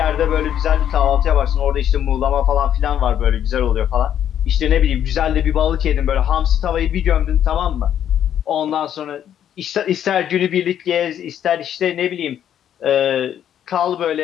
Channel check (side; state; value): right; quieter; 10.0 dB